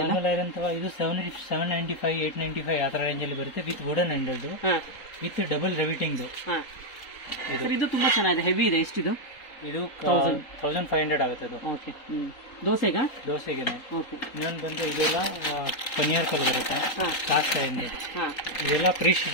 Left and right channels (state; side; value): late; right; 3.8 ms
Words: ಐರನ್ ತವ ಇದು 795 895 ಆ ತರ ರೇಂಜ್ ಅಲ್ಲಿ ಬರುತ್ತೆ with wooden handled with double riveting. ಇದು ತುಂಬಾ ಚೆನ್ನಾಗಿದೆ, ಹೆವಿ ಇದೆ. ಎಷ್ಟಿದು? ಇದು 1500 ಆಗುತ್ತೆ ಅದು. ಓಕೆ ದೋಸೆಗೆ. ಓಕೆ ಇನ್ನೊಂದು ಬಂದು ಇದೆಲ್ಲ ಪನ್ನೀರ್ ಕಲ್ ಬರುತ್ತೆ ಕಾಸ್ಟ್ ಐಂಡ್. ಇದೆಲ್ಲ